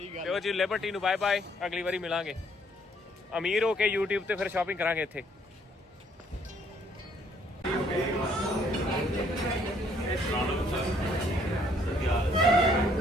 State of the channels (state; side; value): normal; both; correlation 0.65